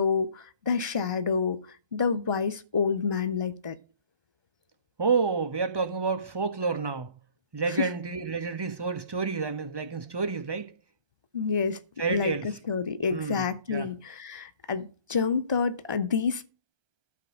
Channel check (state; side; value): late; left; 1.2 ms